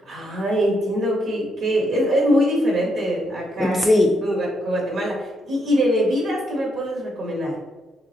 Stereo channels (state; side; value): normal; both; correlation 0.78